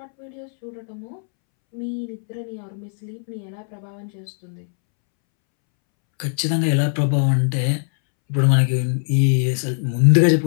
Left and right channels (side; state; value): right; silent; 65 dB below the other